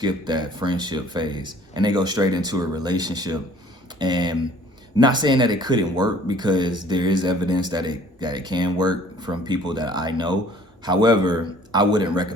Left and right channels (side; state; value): both; normal; correlation 0.54